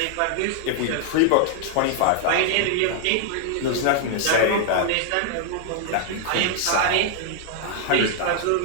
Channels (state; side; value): different; both; correlation 0.00